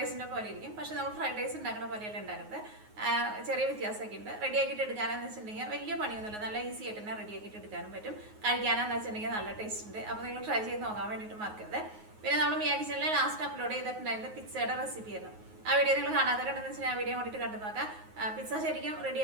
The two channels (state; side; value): late; left; 9.5 ms